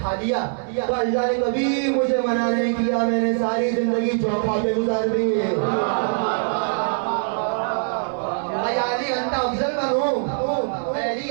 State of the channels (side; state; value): left; silent; 64 dB below the other